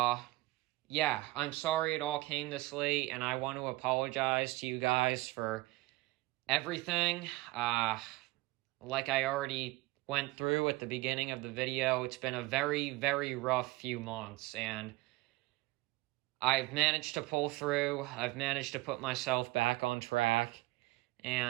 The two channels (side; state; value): left; quieter; 20.7 dB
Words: yeah, I'm sorry it all came this late, and I want to apologize to you guys for everything. Like I already went through at the beginning of the video, it's been a very, very rough few months, and I've managed to pull through. I've managed to put myself back on track,